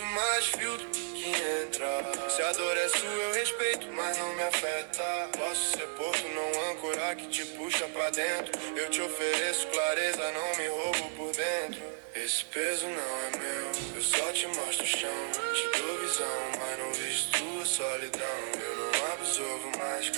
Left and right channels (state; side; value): silent; left; 56 dB below the other